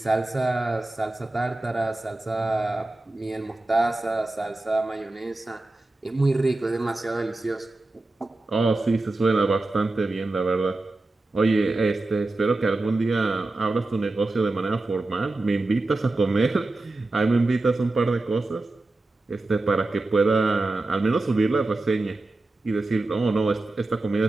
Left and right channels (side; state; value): left; quieter; 3.0 dB